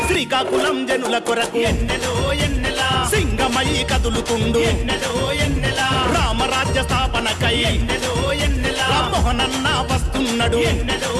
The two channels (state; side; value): identical; both; correlation 1.00